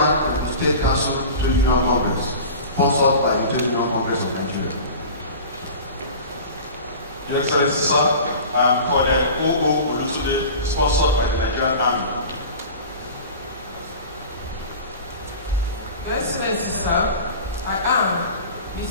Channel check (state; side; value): inverted; both; correlation -0.36